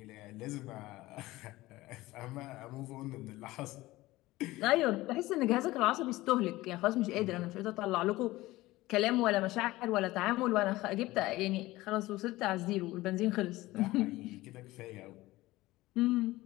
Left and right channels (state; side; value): quieter; right; 18.4 dB